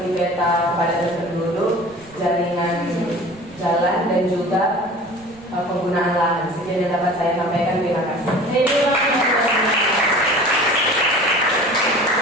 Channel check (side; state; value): right; noise; rumble, 25 dB below the sound